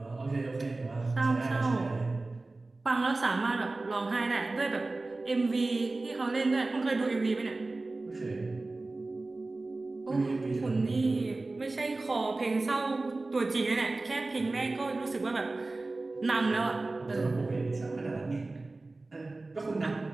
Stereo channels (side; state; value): left; quieter; 3.2 dB